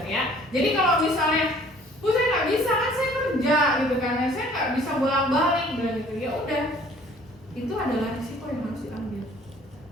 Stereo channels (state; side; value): normal; both; correlation 0.55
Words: ya. Jadi kalau misalnya, bu saya nggak bisa kan saya kerja gitu kan, saya nggak bisa bolak-balik bilang gitu, ya udah, itu adalah risiko yang harus diambil,